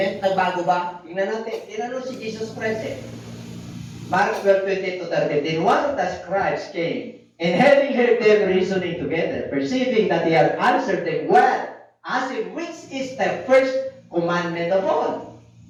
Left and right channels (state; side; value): identical; both; correlation 1.00